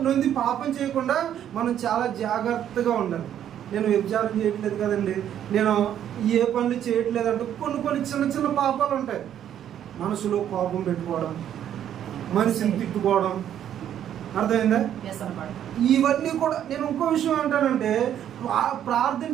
నుండి పాపం చేయకుండా మనం చాలా జాగ్రత్తగా ఉండాలి. నేను వ్యభిచారం చేయట్లేదు కదండి, నేను ఏ పనులు చేయట్లేదు అంటే కొన్ని చిన్న చిన్న పాపాలు ఉంటాయి. మనసులో కోపం పెట్టుకోవడం, మనిషిని తిట్టుకోవడం, అర్థమైందా? ఇవన్నీ కూడా. నేను ఇంకో విషయం ఏంటంటే ప్రార్థన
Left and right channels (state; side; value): quieter; left; 10.2 dB